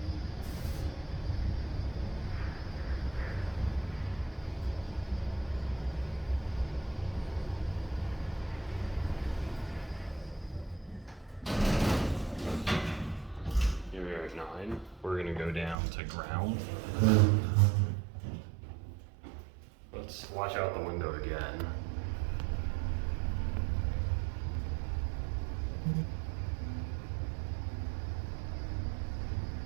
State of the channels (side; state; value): left; drops out; at 15.8 s